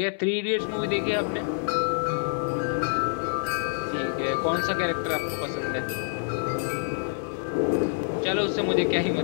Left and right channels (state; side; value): silent; right; 60 dB below the other